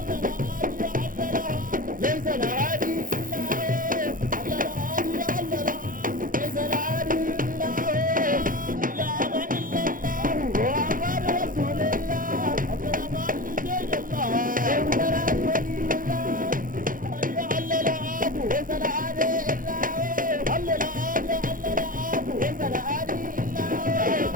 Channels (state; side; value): late; left; 0.40 ms